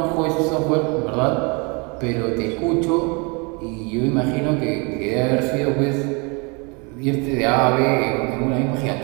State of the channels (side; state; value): left; quieter; 31.2 dB